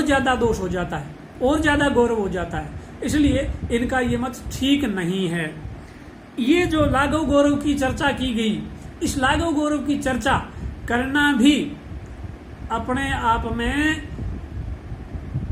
ज्यादा दोष हो जाता है, और ज्यादा गौरव हो जाता है, इसलिए इनका ये मत ठीक नहीं है। ये जो लाघव गौरव की चर्चा की गई, इस लाघव गौरव की चर्चा करना भी अपने आप में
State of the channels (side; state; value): both; identical; correlation 1.00